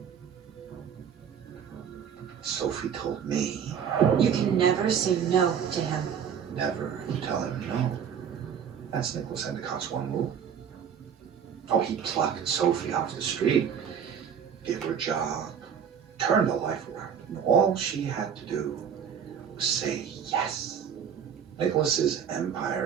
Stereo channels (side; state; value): left; quieter; 7.9 dB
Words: Sophie told me You can never say no to him. never tell him no. That's Nicholas Endicott's one rule. Oh, he plucked Sophie off the street, gave her a job, turned her life around. And all she had to do was say yes. Nicholas's